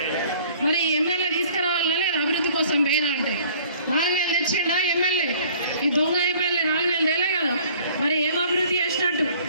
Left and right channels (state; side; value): inverted; both; correlation -0.53